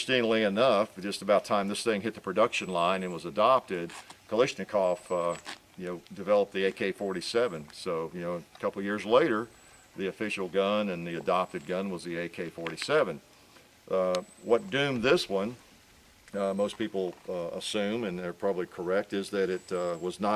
enough, just about time this thing hit the production line and was adopted, Kalashnikov developed the AK-47. So, a couple of years later, the official gun and the adopted gun was the AK-47. What doomed this one, most people assume, and they're probably correct, is that it was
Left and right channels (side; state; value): both; identical; correlation 1.00